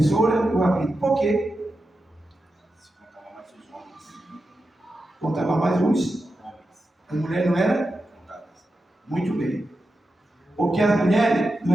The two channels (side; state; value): both; normal; correlation 0.90